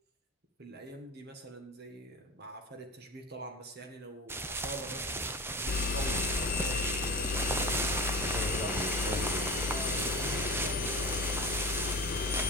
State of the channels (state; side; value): normal; both; correlation 0.30